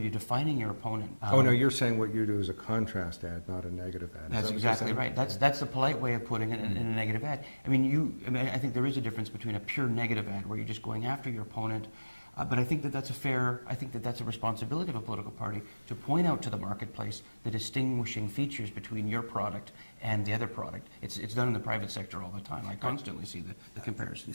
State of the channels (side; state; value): both; inverted; correlation -1.00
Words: you're defining your opponent. Oh no, you're saying what you do is a contrast ad, not a negative ad. That's exactly right. That's the polite way of putting it in a negative ad. I mean, I think there is a difference between a pure negative ad where you're just going after your opponent. But I think that's a responsibility of a political party to point out to the marketplace the distinguishing features between your product and the other product. It's done in the private sector all the time. I constantly see the